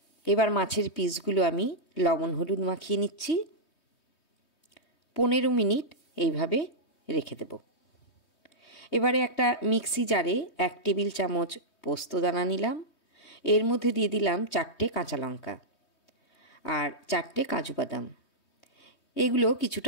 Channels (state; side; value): late; right; 3.2 ms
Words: এবার মাছের পিসগুলো আমি লবণ হলুদ মাখিয়ে নিচ্ছি। 15 মিনিট এইভাবে রেখে দেব। এবারে একটা মিক্সি জারে 1 টেবিল চামচ পোস্ত দানা নিলাম। এর মধ্যে দিয়ে দিলাম 4টে কাঁচা লঙ্কা আর 4টে কাজু বাদাম। এগুলো